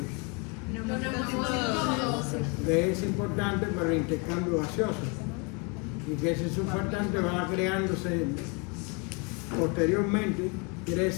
que es importante para el intercambio gaseoso, y que ese surfactante va creándose posteriormente. Quiere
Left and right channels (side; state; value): right; quieter; 32.5 dB